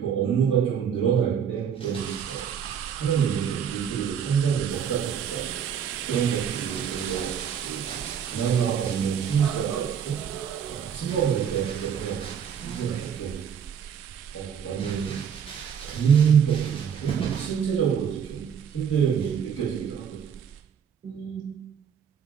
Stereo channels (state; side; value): quieter; left; 7.8 dB